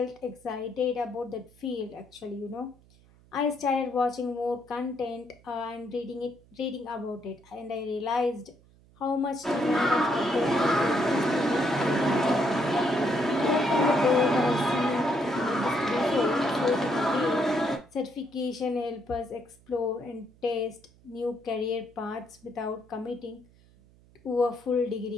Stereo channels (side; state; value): right; noise; hum, 28 dB below the sound